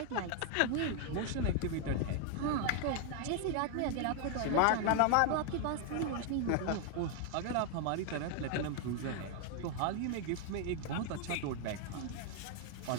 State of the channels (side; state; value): both; different; correlation 0.00